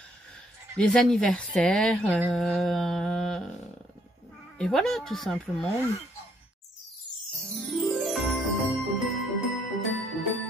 les anniversaires, et voilà, tout simplement.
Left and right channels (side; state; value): both; normal; correlation 0.69